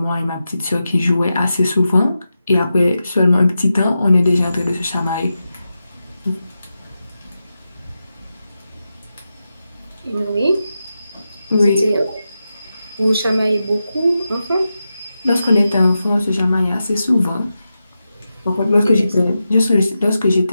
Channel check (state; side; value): inverted; both; correlation -0.90